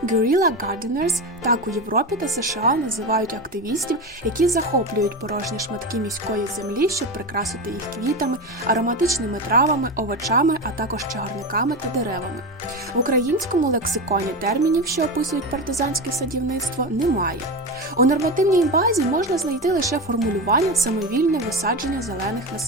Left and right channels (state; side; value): normal; both; correlation 0.20